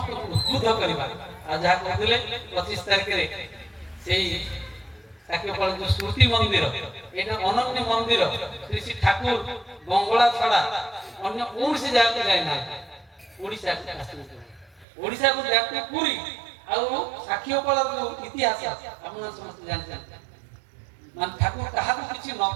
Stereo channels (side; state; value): left; drops out; at 14.9 s